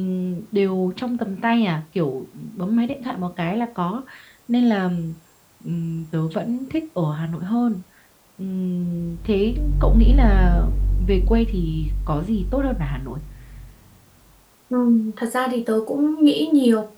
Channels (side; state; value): both; identical; correlation 1.00